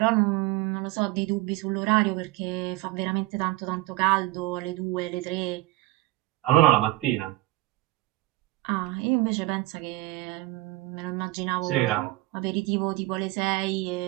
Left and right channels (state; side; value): quieter; left; 19.0 dB